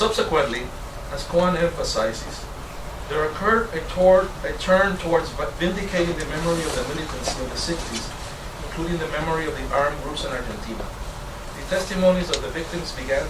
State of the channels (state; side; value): identical; both; correlation 1.00